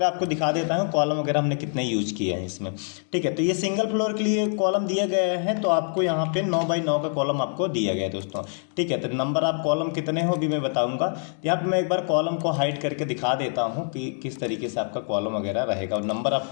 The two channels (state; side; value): silent; right; 62 dB below the other